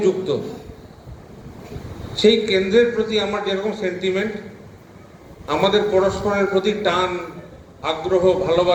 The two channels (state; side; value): identical; both; correlation 1.00